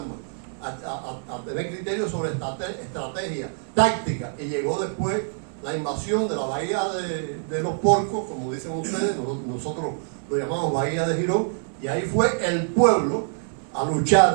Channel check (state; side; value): silent; left; 62 dB below the other